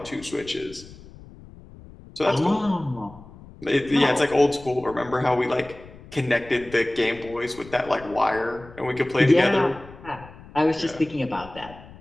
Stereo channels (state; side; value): noise; left; rumble, 19 dB below the sound